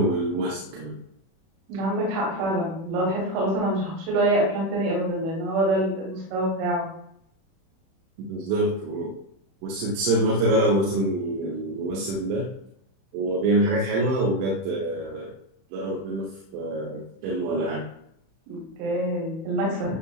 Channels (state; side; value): late; left; 31 ms